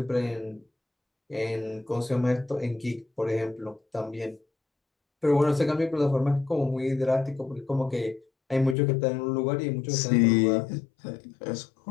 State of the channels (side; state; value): right; drops out; at 8.8 s